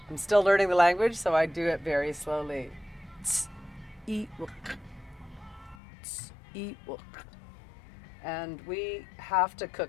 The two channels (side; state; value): right; drops out; at 5.8 s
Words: I'm still learning the language, so I do it very slowly. And we have to